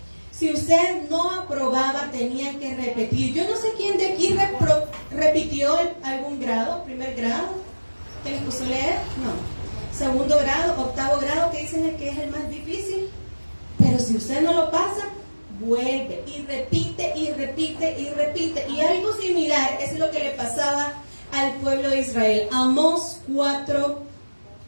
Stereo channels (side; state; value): both; inverted; correlation -1.00